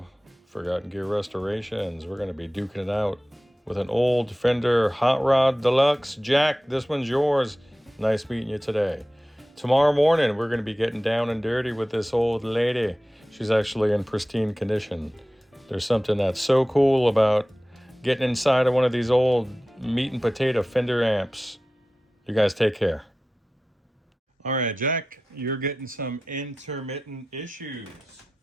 Forgotten Gear Restorations. We're going to be duking it out with an old Fender Hotrod Deluxe. Jack, this one's yours. Nice meeting you today. Tomorrow morning, we're going to be getting down and dirty with this old lady. She's actually in pristine condition. There's something that's so cool about getting inside of one of these old meat and potato Fender amps. You guys take care. All right, Jack, you're getting some intermittent issues.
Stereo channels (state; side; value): normal; both; correlation 0.95